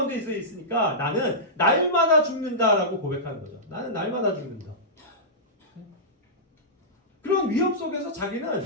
있으니까 나는 날마다 죽는다라고 고백하는 거죠. 나는 날마다 죽는다. 그런 위험 속에서 자기는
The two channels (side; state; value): both; normal; correlation -0.15